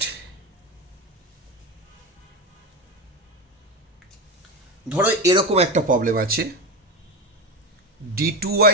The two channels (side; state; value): both; normal; correlation 0.18